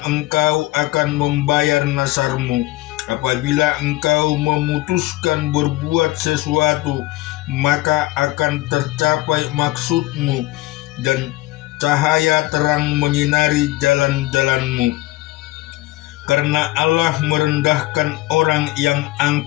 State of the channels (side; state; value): right; quieter; 18.6 dB